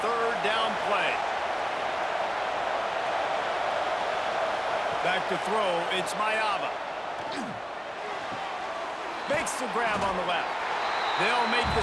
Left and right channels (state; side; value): identical; both; correlation 1.00